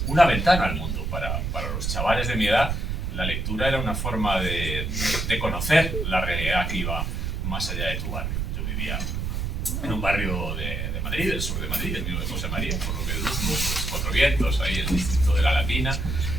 una ventana al mundo. Para los chavales de mi edad, la lectura era una forma de conocer la realidad que iba más allá de tu barrio. Yo vivía en un barrio de Madrid, del sur de Madrid, el mío de José María, por lo que deduzco, pues, Cuatro Vientos, ahí en el distrito de La Latina,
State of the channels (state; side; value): noise; right; rumble, 1 dB below the sound